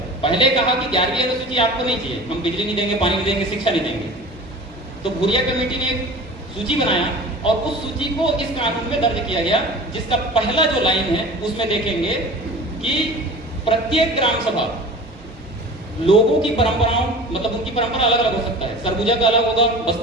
पहले कहा कि 11वीं अनुसूची आपको नहीं चाहिए, हम बिजली नहीं देंगे, पानी नहीं देंगे, शिक्षा नहीं देंगे। तो भूरिया कमेटी ने एक सूची बनाया और उस सूची को इस कानून में दर्ज किया गया, जिसका पहला जो लाइन है उसमें देखेंगे कि प्रत्येक ग्राम सभा लोगों की परंपराओं मतलब उनकी परंपरा अलग अलग हो सकता है, सरगुजा का अलग होगा,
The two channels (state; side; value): normal; both; correlation 0.39